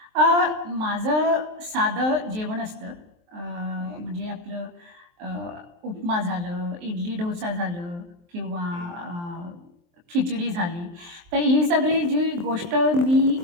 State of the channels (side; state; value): left; late; 23 ms